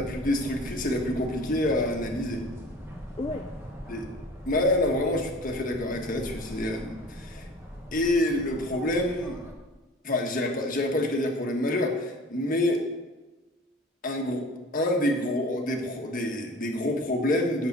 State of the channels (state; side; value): normal; both; correlation 0.43